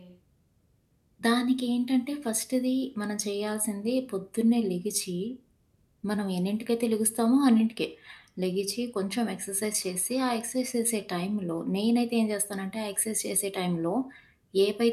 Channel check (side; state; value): both; identical; correlation 1.00